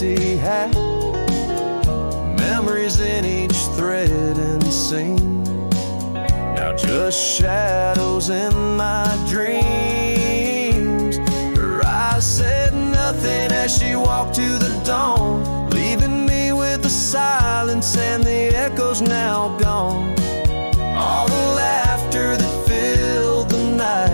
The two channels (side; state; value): both; inverted; correlation -1.00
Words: hat. Memories in each thread and seam, now just shadows in my dreams. Her eyes said nothing as she walked to the dawn, leaving me with the silence and the echoes now gone. All the laughter that filled the